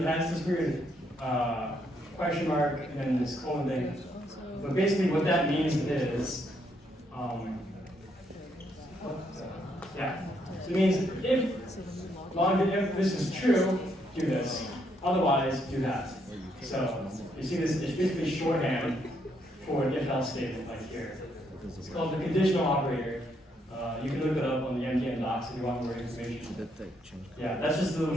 has this weird question mark and then this colon thing. But basically what that means is, yeah. So it means if this is true, do this. Otherwise, do that. So you see this, it's basically shorthand for an if-else statement like here. It's called the conditional operator. You can look it up on the MTN docs if you want more information. Yeah, that's just a little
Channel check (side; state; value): both; normal; correlation 0.74